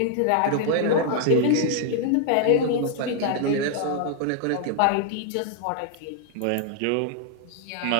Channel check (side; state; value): both; different; correlation 0.00